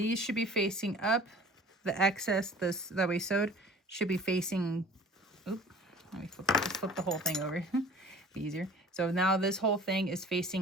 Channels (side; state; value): both; normal; correlation 0.45